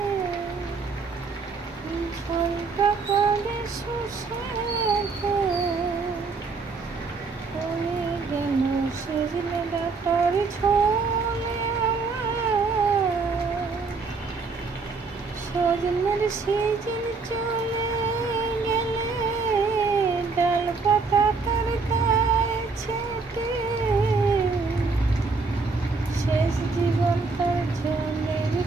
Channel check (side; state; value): left; quieter; 4.3 dB